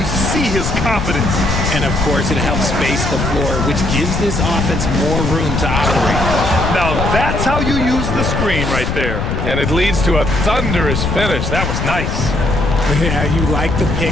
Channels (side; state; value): left; noise; rumble, 2 dB below the sound